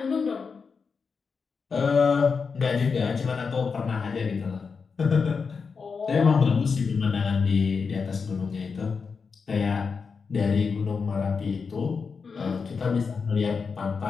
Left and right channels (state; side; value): quieter; right; 5.3 dB